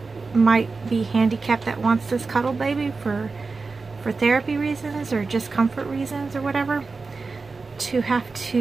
might be handicapped that wants this Cuddle baby for therapy reasons or just comfort reasons or whatever, to have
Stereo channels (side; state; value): left; quieter; 4.2 dB